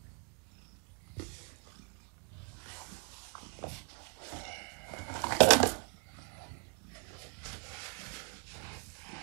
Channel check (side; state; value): left; quieter; 32.5 dB